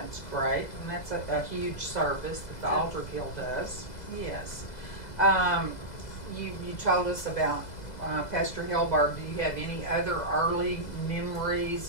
great, and that's a huge service that the Altar Guild does. Yes. You told us about Pastor Helberg. Do you have any other early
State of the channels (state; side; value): late; right; 2.0 ms